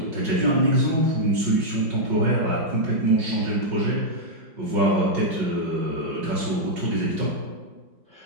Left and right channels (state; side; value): late; left; 5.4 ms